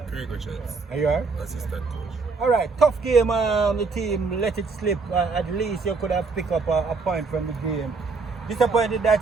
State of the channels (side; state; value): left; quieter; 4.4 dB